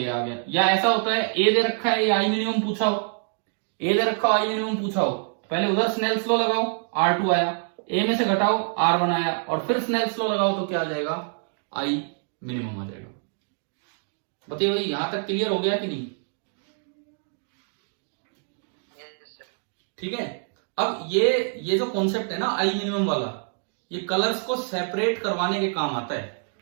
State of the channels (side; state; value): left; silent; 61 dB below the other